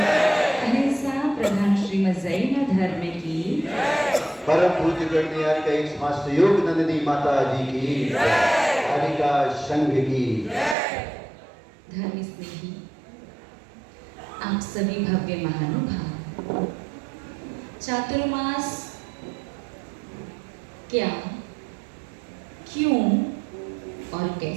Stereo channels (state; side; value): drops out; left; at 10.8 s